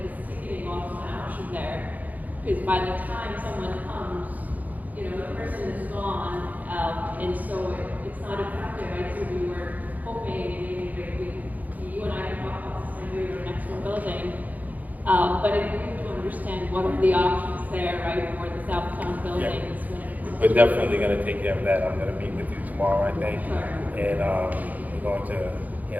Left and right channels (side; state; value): left; late; 0.080 ms